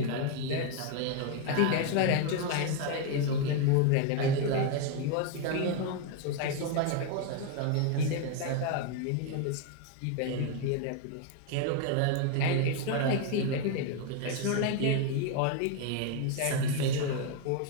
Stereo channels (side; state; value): both; different; correlation 0.01